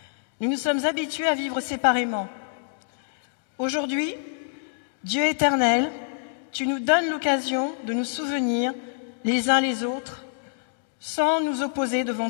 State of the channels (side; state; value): right; silent; digital silence